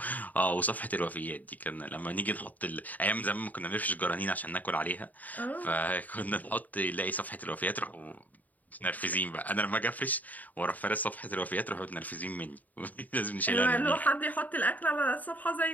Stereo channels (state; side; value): late; right; 0.078 ms